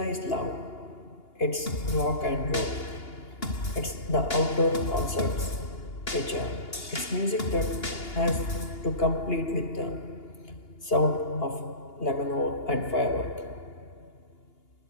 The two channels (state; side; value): late; right; 2.8 ms